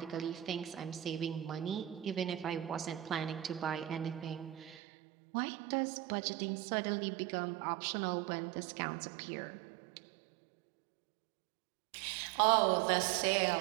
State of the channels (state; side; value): drops out; left; at 4.8 s